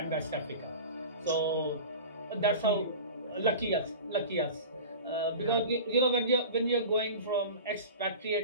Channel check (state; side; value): inverted; both; correlation -0.34